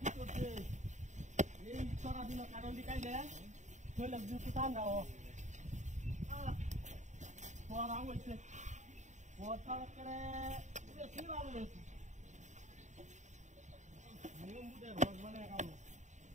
করছে এই চোরা দিন কাটলটি কাইলে কইলে দুটো টান দাও চোরা হইছে ওটা করে বেশি লাভ হইছে নিয়ম বুঝে রোজ মানে কাম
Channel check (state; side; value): late; left; 0.34 ms